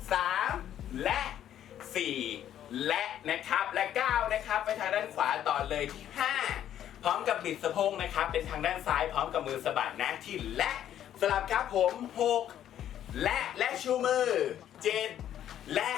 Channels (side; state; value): right; quieter; 10.8 dB